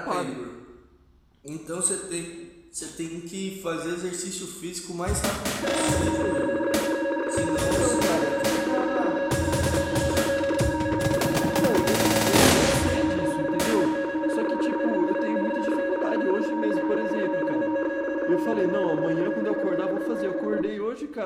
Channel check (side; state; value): both; identical; correlation 1.00